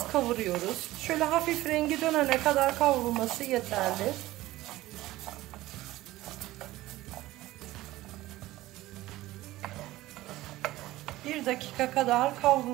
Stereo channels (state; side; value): quieter; left; 16.9 dB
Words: kavuruyoruz. Şöyle hafif rengi dönene kadar kavrulması yeterli. Bir dakika kadar